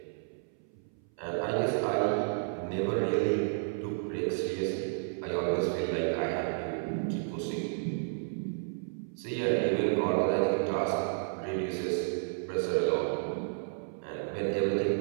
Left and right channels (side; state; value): left; silent; 57 dB below the other